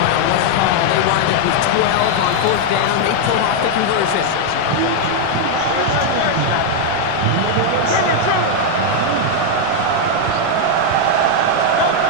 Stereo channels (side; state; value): both; different; correlation 0.00